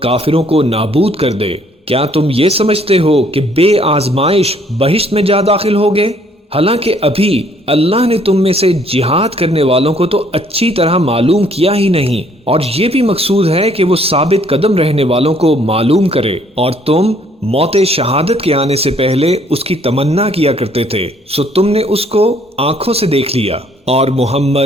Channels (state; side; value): normal; both; correlation 0.63